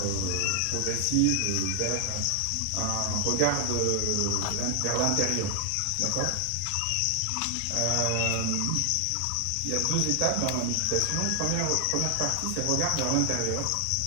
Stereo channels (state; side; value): different; both; correlation 0.00